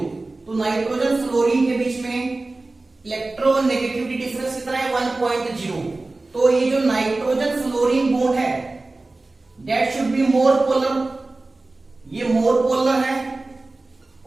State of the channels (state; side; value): quieter; left; 3.2 dB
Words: तो नाइट्रोजन फ्लोरीन के बीच में इलेक्ट्रोनेगेटिविटी डिफरेंस कितना है? 1.0। तो ये जो नाइट्रोजन फ्लोरीन बॉन्ड है that should be more polar, ये मोर पोलर है,